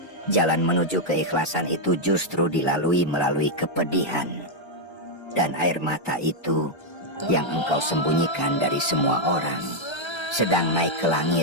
jalan menuju keikhlasan itu justru dilalui melalui kepedihan. Dan air mata itu yang engkau sembunyikan dari semua orang sedang naik ke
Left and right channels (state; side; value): late; right; 1.3 ms